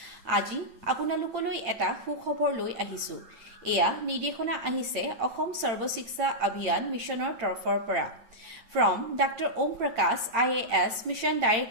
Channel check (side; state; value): left; late; 8.8 ms